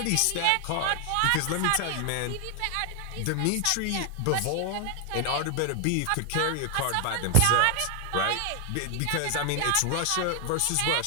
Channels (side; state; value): both; different; correlation 0.00